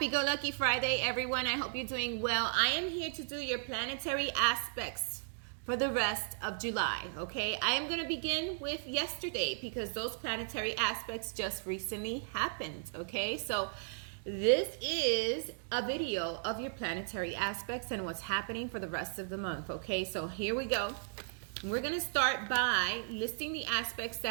Friday, everyone. I hope you're doing well. I am here to do your planetary aspects for the rest of July, okay? I am going to begin with yesterday because those planetary aspects just recently happened, okay? So this is a video of your planetary aspects and what's happening for the rest of the month, okay? So here we go. We're going to start by listing the aspects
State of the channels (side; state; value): left; silent; digital silence